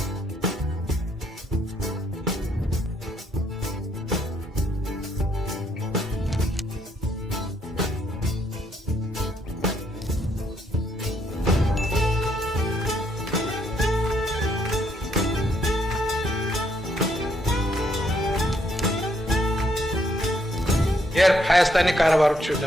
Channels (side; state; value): both; normal; correlation 0.72